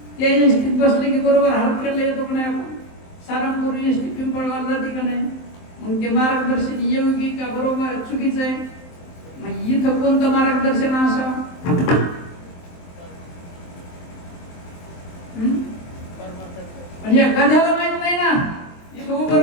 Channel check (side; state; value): right; late; 23 ms